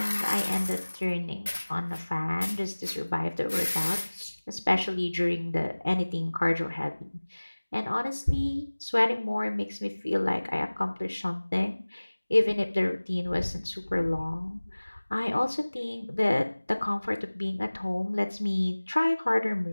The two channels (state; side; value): inverted; both; correlation -1.00